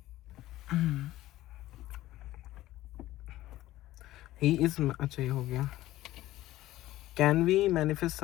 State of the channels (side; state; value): right; quieter; 15.6 dB